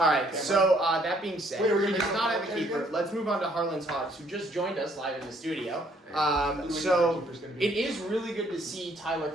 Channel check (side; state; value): both; normal; correlation 0.65